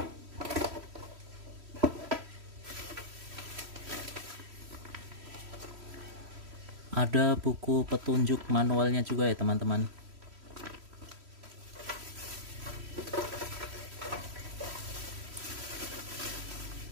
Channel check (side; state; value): left; late; 3.1 ms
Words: Ada buku petunjuk manualnya juga ya teman-teman.